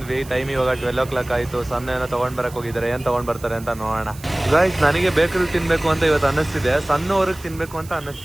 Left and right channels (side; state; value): right; noise; hiss, 19 dB below the sound